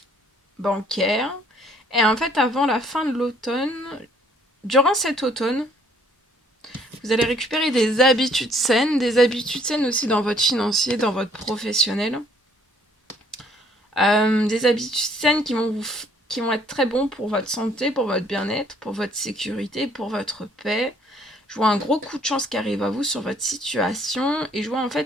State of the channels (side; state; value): both; normal; correlation 0.62